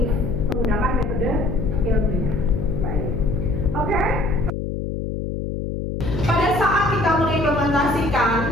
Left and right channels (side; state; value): left; noise; hum, 4 dB below the sound